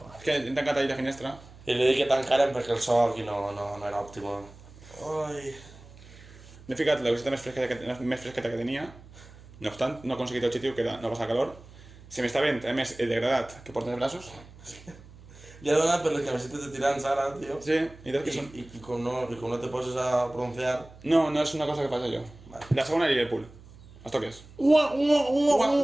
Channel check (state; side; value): noise; right; hum, 20 dB below the sound